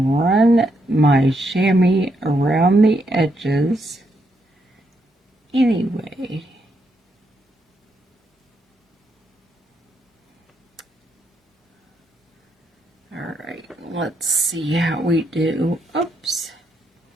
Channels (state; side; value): normal; both; correlation 0.78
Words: run my chamois around the edges anyway. Alright, let's see how we do. Oops,